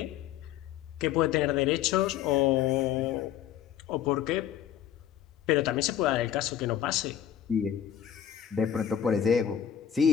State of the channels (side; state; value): right; quieter; 9.8 dB